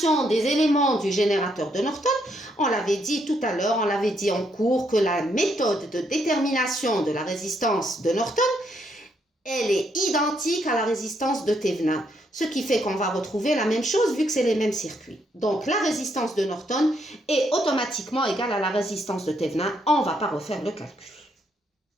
des éléments du générateur de Norton, on l'avait dit tout à l'heure, on l'avait dit en cours que la méthode de détermination de la résistance de Norton, elle est identique à la résistance de Thévenin. Ce qui fait qu'on va retrouver la même chose vu que c'est les mêmes circuits. Donc la résistance de Norton est automatiquement égale à la résistance de Thévenin. On ne va pas refaire le calcul.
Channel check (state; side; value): normal; both; correlation 0.74